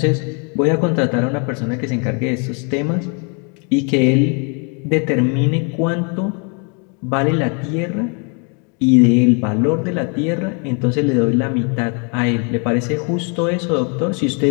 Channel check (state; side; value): quieter; right; 36.7 dB